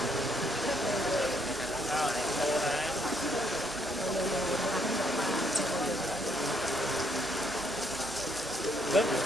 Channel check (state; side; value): normal; both; correlation 0.71